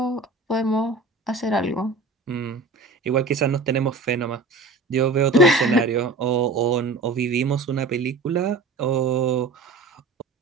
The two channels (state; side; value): quieter; left; 3.6 dB